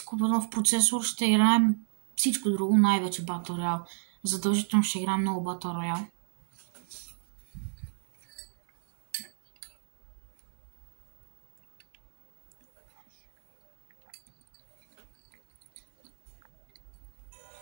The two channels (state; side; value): silent; left; 59 dB below the other